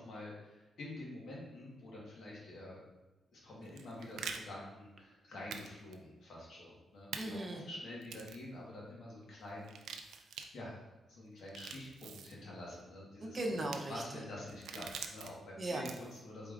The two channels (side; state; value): both; normal; correlation 0.79